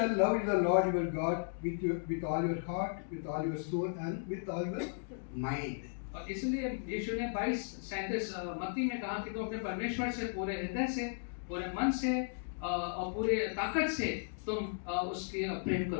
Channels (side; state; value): right; silent; digital silence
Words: love the Lord your God with all your heart, with all your soul and with all your mind. और इसलिए यीशु ने 22:37 मत्ती में कहा कि तुम अपने परमेश्वर से पूरे हृदय से, पूरे मन से और पूरे ताकत से तुम उसके प्रेम